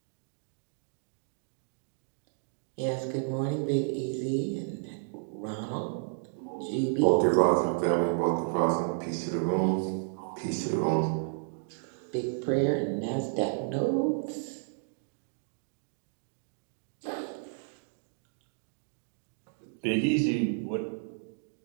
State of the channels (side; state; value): left; silent; digital silence